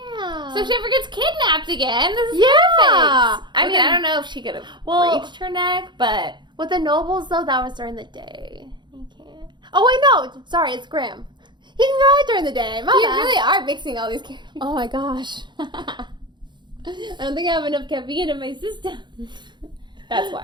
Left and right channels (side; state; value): left; late; 0.22 ms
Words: So if she ever gets kidnapped again, this is Yeah. perfect. I mean, I don't know if she could have reached her neck, but... With the nobles, though, that was during the day. You can't. Oh, wait, no. Sorry, it's Graham. He can go out during the day. My You bad. really are mixing all these characters. Oh, my gosh. I don't think I have enough caffeine in my system. That's